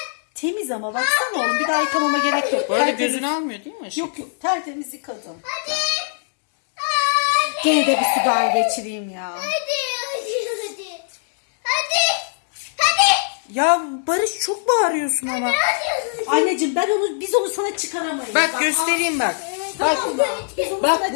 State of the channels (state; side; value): silent; right; digital silence